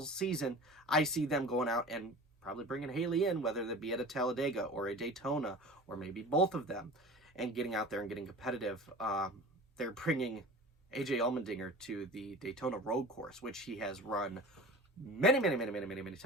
season. I see them going out and probably bringing Haley in, whether that be at a Talladega or a Daytona, or maybe both of them, and getting out there and getting competitive. They're bringing AJ Allmendinger to the Daytona road course, which he has run many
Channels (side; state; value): both; normal; correlation 0.38